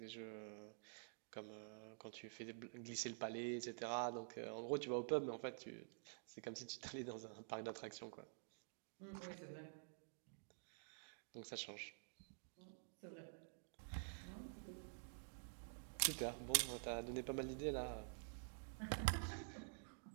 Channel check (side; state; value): left; silent; digital silence